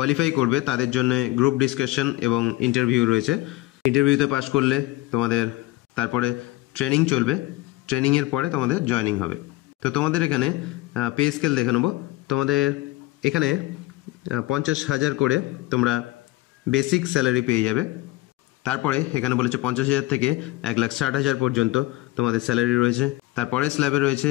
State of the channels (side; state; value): right; quieter; 18.7 dB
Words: করবে তাদের জন্য গ্রুপ ডিসকাশন এবং ইন্টারভিউ রয়েছে। ইন্টারভিউতে পাস করলে তোমাদের তারপরে ট্রেনিং চলবে, ট্রেনিংয়ের পরে তোমাদের জয়েনিং হবে। তো তোমাদের এখানে পে স্কেল দেখে নেবো। তোমাদের এখানে 50,000 করে তোমরা বেসিক স্যালারি পেয়ে যাবে। তারপরে এখানে বলেছে 50,000 থেকে 1,60,000 পর্যন্ত তোমাদের স্যালারি রয়েছে। তারপরে স্ল্যাবে রয়েছে